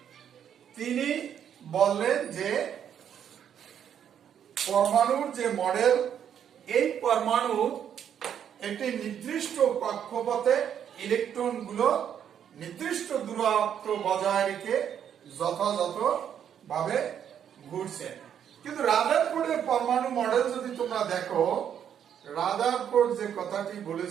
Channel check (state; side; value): quieter; left; 9.0 dB